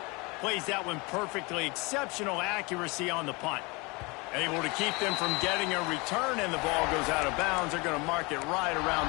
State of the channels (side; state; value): right; quieter; 26.7 dB